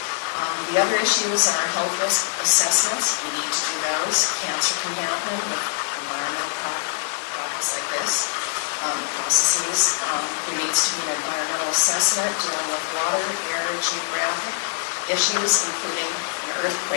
The other issues are health risk assessments. We need to do those. Cancer can happen with environmental products like this, processes. There needs to be an environmental assessment dealing with water, air, geographic issues, including an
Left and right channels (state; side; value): silent; right; 63 dB below the other